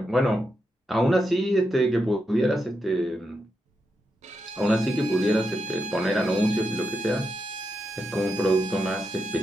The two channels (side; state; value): both; normal; correlation 0.85